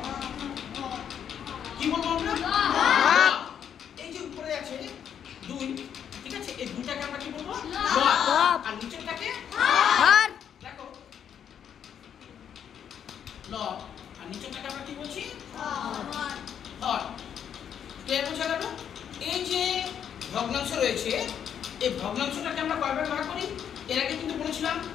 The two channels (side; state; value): right; quieter; 8.7 dB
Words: কি বলবো আমরা? এই যে উপরে আছে 2, ঠিক আছে? এই 2টাকে আমরা কি বলবো? লব। আর নিচেরটাকে হর। দেখো, লব আর নিচেরটাকে আমরা কি বলছি? হর। হর। ক্লিয়ার বোঝা গেল? এই যে ভগ্নাংশ রয়েছে, এই ভগ্নাংশটাকে আমরা কয় ভাগে ভাগ করি? এর আগে কিন্তু বলেছিলাম